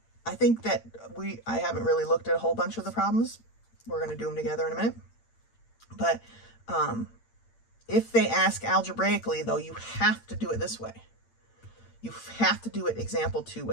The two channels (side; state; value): right; late; 8.8 ms